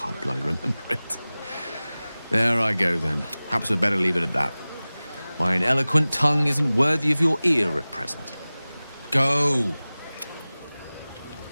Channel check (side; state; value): both; inverted; correlation -0.98